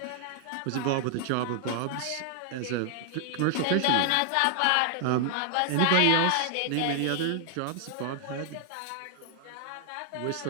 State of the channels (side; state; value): both; different; correlation 0.00